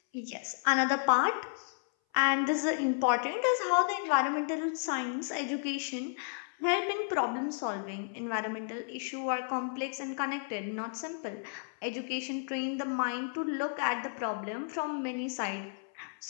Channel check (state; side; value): silent; right; 56 dB below the other